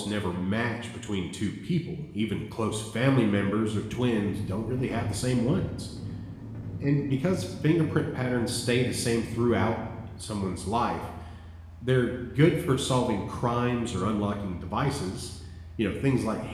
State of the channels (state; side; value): identical; both; correlation 1.00